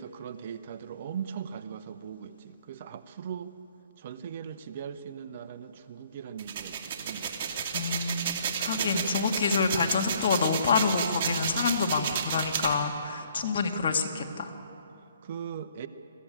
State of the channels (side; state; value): both; inverted; correlation -0.61